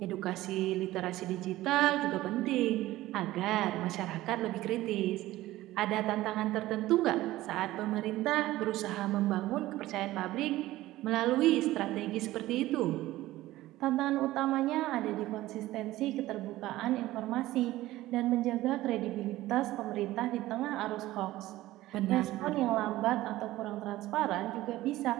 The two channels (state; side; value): quieter; left; 16.4 dB